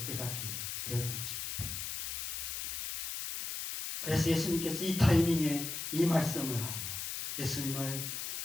깨닫게 되었던 것입니다. 그래서 예수님께서 이 타이밍에 이 말씀을 하세요. 예수님을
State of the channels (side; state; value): left; noise; hiss, 4 dB below the sound